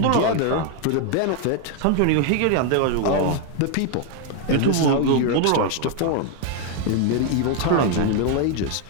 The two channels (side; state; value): both; different; correlation 0.00